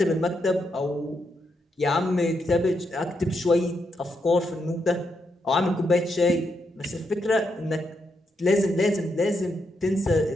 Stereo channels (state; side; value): normal; both; correlation 0.81